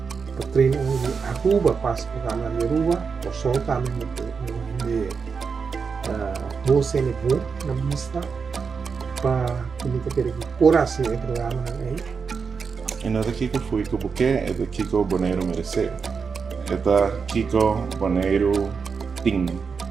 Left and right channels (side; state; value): left; quieter; 5.5 dB